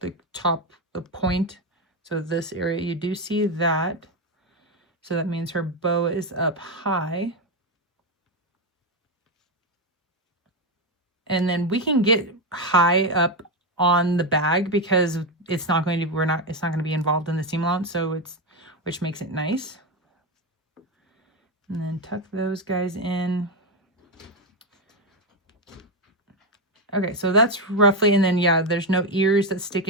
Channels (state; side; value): normal; both; correlation 0.09